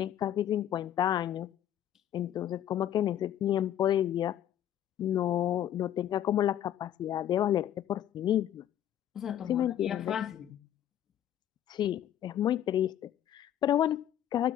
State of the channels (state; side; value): quieter; right; 11.0 dB